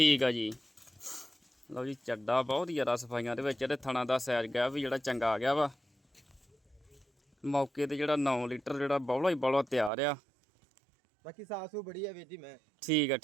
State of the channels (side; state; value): left; drops out; at 9.9 s